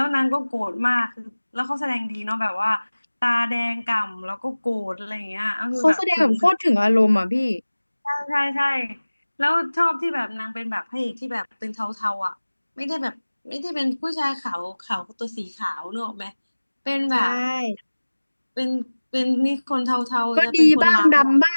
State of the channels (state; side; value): inverted; both; correlation -1.00